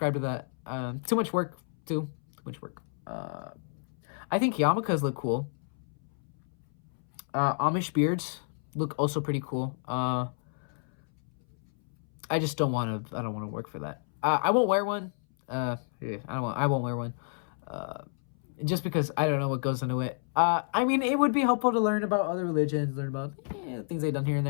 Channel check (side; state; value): right; silent; 58 dB below the other